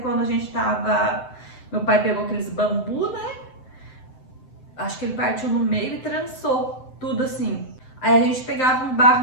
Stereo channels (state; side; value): late; right; 7.8 ms